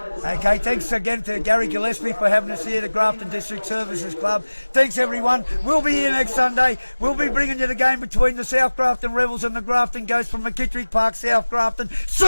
Okay, thanks again to Gary Gillespie for having us here, the Grafton District Services Club. Thanks, everyone. We'll be here next Sunday. We'll be bringing you the game between the South Grafton Rebels and the Grafton Ghosts from McKittrick Park, South Grafton. See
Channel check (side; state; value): both; inverted; correlation -1.00